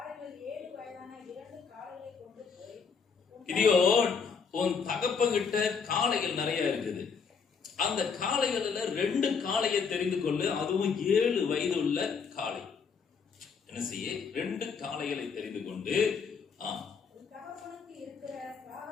கிதியோன், உன் தகப்பங்கிட்ட காளைகள் நிறைய இருக்குது. அந்த காளைகளில் 2 காளையை தெரிந்து கொள்ளு, அதுவும் 7 வயது உள்ள காளை. என்ன செய்ய? 2 காளைகளை தெரிந்து கொண்டு,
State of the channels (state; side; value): quieter; right; 5.8 dB